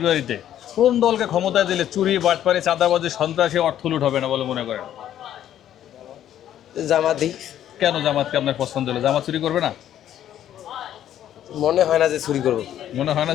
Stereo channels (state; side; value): quieter; right; 11.2 dB